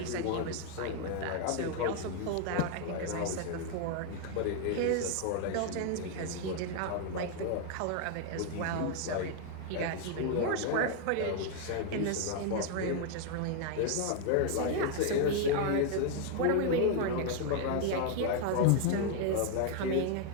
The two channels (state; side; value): different; both; correlation 0.00